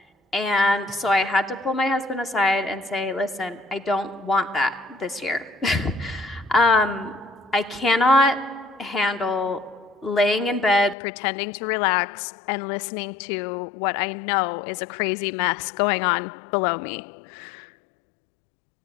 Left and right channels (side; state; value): right; drops out; at 11.0 s